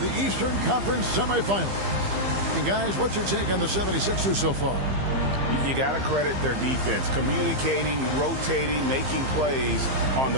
Eastern Conference semifinals. And guys, what's your take on the 76ers so far? You got to credit their defense, communicating, rotating, making plays on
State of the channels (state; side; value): late; left; 15 ms